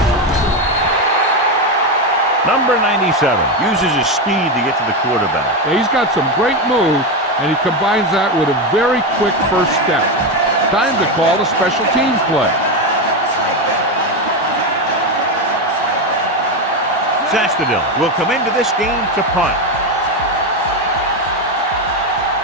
Number 97 uses his speed to get to the quarterback. Yeah, he's got some great moves, and he combines that with a very quick first step. Time to call the special teams play. Sastadil will come into this game to punt.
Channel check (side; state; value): both; normal; correlation 0.12